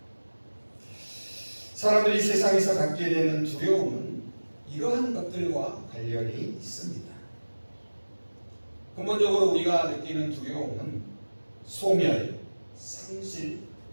사람들이 세상에서 갖게 되는 두려움은 이러한 것들과 관련이 있습니다. 근본적으로 우리가 느끼는 두려움은 소멸, 상실,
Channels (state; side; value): inverted; both; correlation -1.00